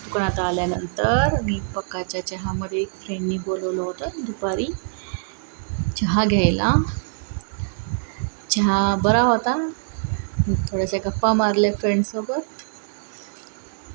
दुकान आता आल्यानंतर मी पक्काच्या चहामध्ये एक फ्रेंडनी बोलवलं होतं दुपारी चहा घ्यायला. चहा बरा होता. थोड्याशा गप्पा मारल्या फ्रेंडसोबत.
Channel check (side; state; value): left; silent; 63 dB below the other